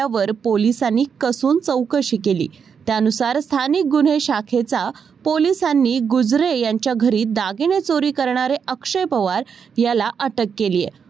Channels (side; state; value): left; quieter; 6.6 dB